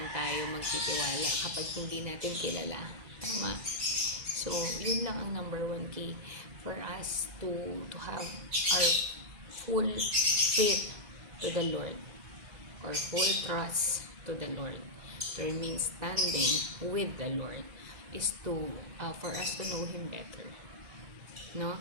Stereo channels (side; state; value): left; late; 2.0 ms